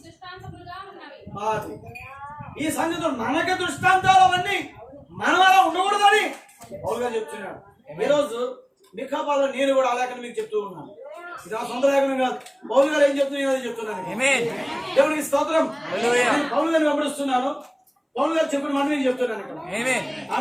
ఈ సంగతులు మనక దృష్టాంతాలు అవన్నీ మనం అలా ఉండకూడదని పౌలుగా చెప్తున్నాడు. ఈరోజు మిఖాపాలో నేను కూడా అలాగని మీకు చెప్తూ ఉన్నాను. ఇది నా సొంత లేఖనం కాదు, పౌలు గారు ఏం చెప్తున్నా చెప్తున్నాను. దేవుడికి స్తోత్రం. పౌలు గారిని వెంబడిస్తున్నాను, పౌలు గారు చెప్పిన మాట నేను చెప్తున్నాను ఇక్కడ.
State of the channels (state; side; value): identical; both; correlation 1.00